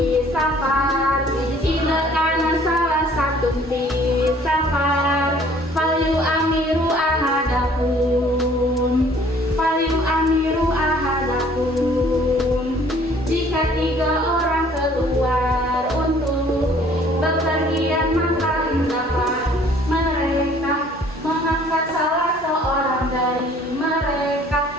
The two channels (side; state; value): both; normal; correlation 0.56